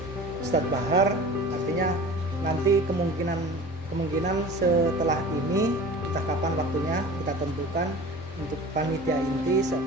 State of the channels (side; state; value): both; normal; correlation 0.39